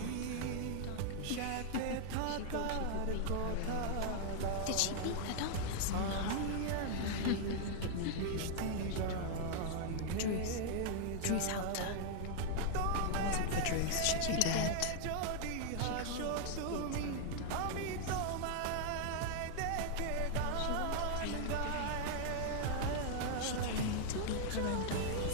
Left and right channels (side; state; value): both; different; correlation -0.01